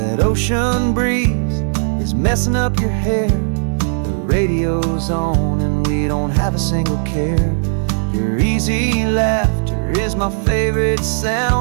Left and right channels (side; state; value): left; silent; digital silence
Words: ocean breeze is messing up your hair. The radio's on and we don't have a single care. Your easy laughter is my favorite